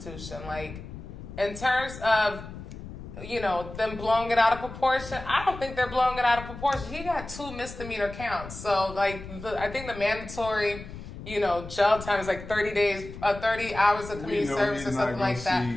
In terms of, them blowing it out of proportion, I don't think they're blowing it out of proportion. He got 2 misdemeanor counts. So, I think the mandatory, jail time is 30 days, 30 hours of community service or something like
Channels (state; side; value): noise; left; rumble, 12 dB below the sound